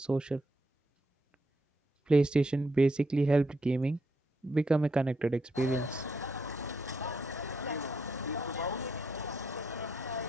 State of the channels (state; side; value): normal; both; correlation 0.78